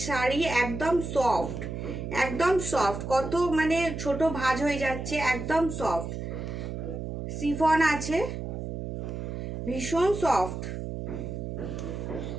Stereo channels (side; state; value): right; noise; hum, 5 dB below the sound